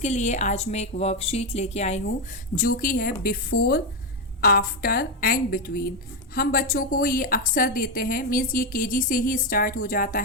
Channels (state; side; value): normal; both; correlation 0.07